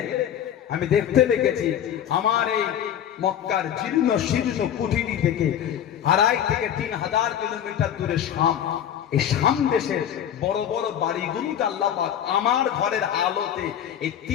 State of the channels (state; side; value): quieter; right; 9.9 dB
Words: আমি দেখতে পেয়েছি আমার এই মক্কার জীর্ণ শীর্ণ কুঠিরি থেকে 2.5 থেকে 3,000 কিলোমিটার দূরে শাম, এই শাম দেশের বড় বড় বাড়িগুলোকে আল্লাহ পাক আমার ঘরের আলোতে এই